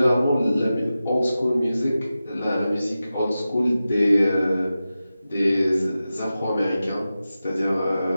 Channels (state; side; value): inverted; both; correlation -0.93